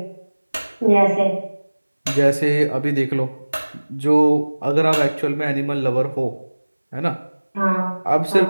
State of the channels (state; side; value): inverted; both; correlation -1.00